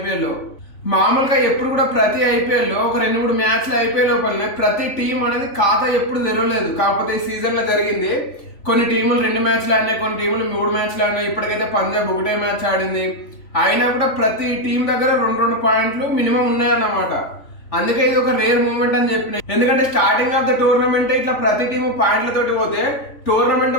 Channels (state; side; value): late; right; 3.5 ms